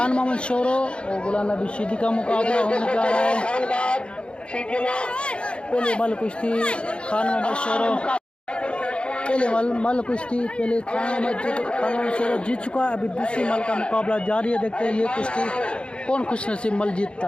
मोहम्मद शोरो और गुलाम नबी सिद्दी का मुकाबला होने जा रहा है। पहले मल कुश्ती खान मोहम्मद शोरो पहले मल कुश्ती पहले खान मोहम्मद शोरो जीत चुका है। अभी दूसरी मल का मुकाबला जारी है। देखते हैं ये कुश्ती कौन खुशनसीब मल जीतता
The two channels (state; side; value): late; right; 0.056 ms